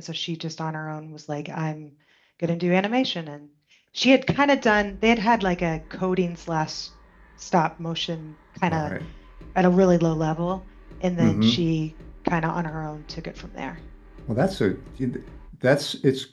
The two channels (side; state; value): both; identical; correlation 1.00